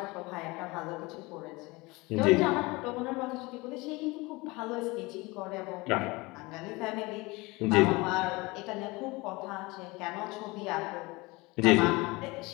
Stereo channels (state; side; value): quieter; right; 23.6 dB